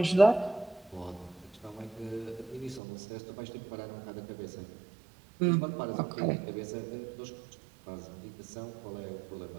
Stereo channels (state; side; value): drops out; left; at 2.8 s